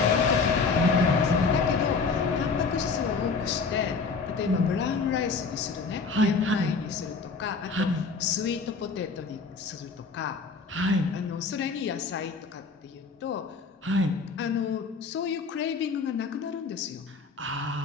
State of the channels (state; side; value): quieter; right; 4.6 dB